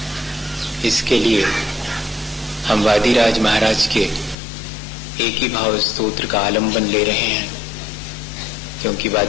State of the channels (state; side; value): drops out; right; at 4.4 s